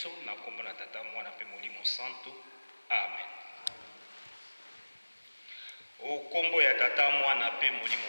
na kombo na tata mwana pe molimo santo. Amen. Okombo ya tata mwana pe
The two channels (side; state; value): both; inverted; correlation -1.00